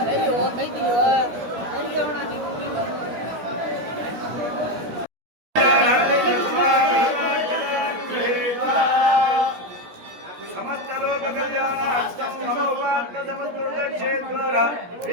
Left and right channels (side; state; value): left; late; 17 ms